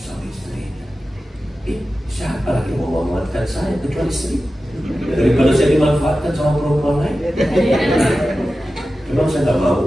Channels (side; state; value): both; normal; correlation 0.94